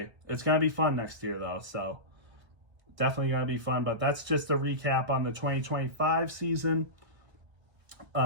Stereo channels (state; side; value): late; left; 1.4 ms